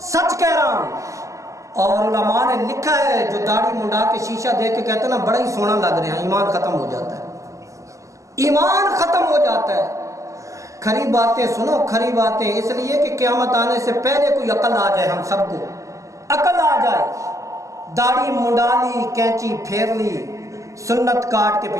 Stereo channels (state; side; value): late; left; 0.16 ms